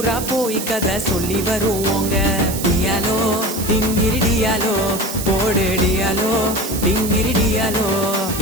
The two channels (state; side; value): noise; right; hiss, 7 dB below the sound